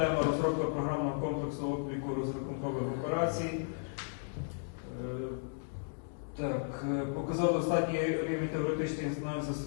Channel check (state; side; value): silent; right; digital silence